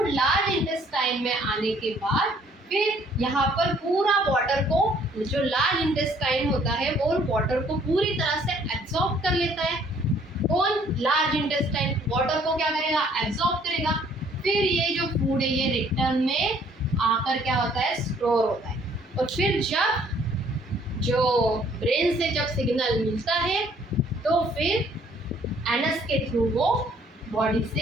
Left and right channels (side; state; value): both; normal; correlation 0.61